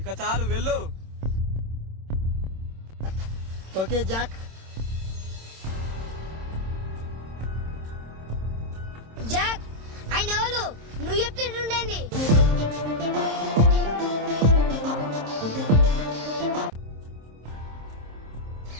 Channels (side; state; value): left; late; 26 ms